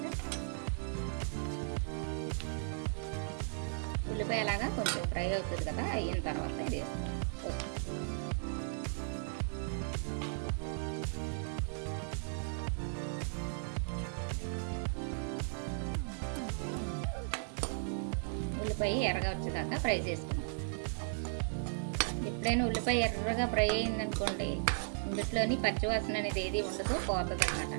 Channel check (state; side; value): silent; left; digital silence